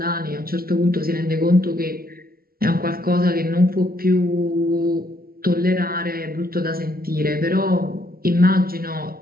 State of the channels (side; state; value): left; late; 0.43 ms